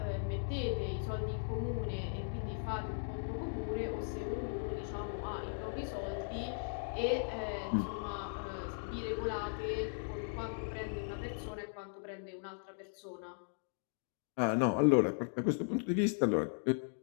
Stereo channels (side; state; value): right; silent; digital silence